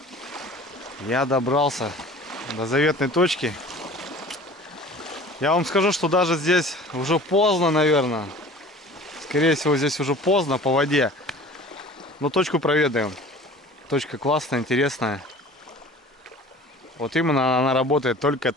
Я добрался до заветной точки. Я вам скажу, что даже здесь уже поздно, наверное. Скорее всего, здесь уже поздно по воде. Но точку проведаем. Точка классная, интересная. Вот именно она работает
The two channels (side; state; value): both; normal; correlation 0.43